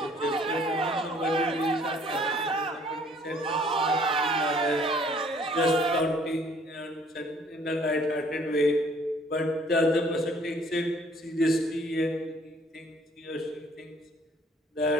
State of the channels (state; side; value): normal; both; correlation 0.59